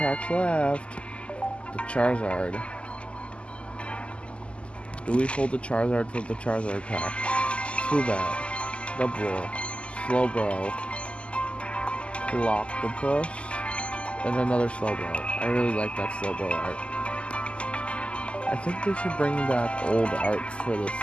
left. The Charizard. Do we pull the Charizard from the Charizard pack? Zubat, Double, Slowbro, Clockopus, and another Slowbro. I really like that Slowbro art. I think they should bring back old arts for this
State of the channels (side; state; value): right; late; 0.055 ms